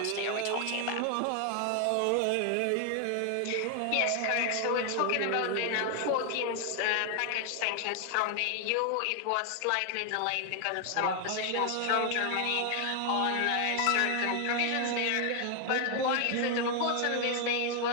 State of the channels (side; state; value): both; different; correlation 0.00